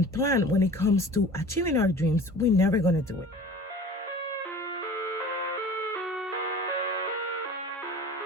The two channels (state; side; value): normal; both; correlation 0.42